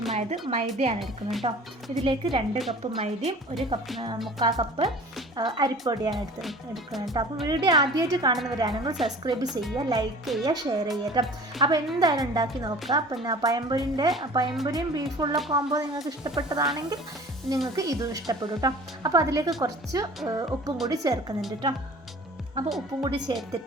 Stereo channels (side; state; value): both; normal; correlation 0.44